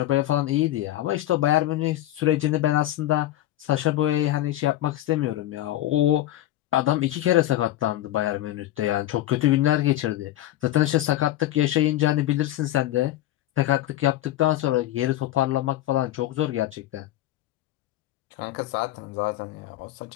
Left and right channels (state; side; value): quieter; right; 14.2 dB